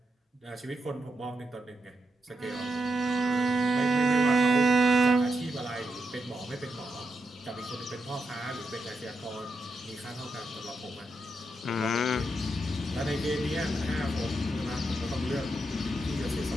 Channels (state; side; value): normal; both; correlation 0.84